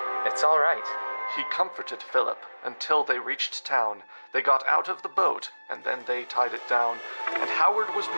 It's all right. He comforted Philip until they reached town. They got out of the boat, and then they tied it down. And Howard was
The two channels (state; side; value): inverted; both; correlation -1.00